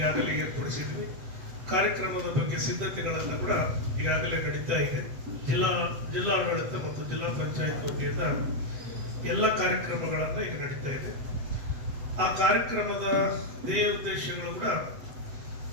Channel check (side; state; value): left; late; 8.0 ms